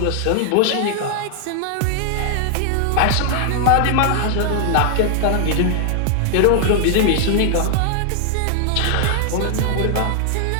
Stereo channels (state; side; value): different; both; correlation 0.00